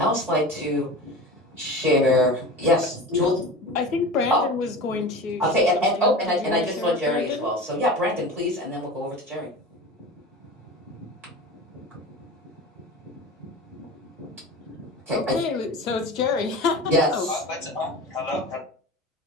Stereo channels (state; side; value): normal; both; correlation 0.32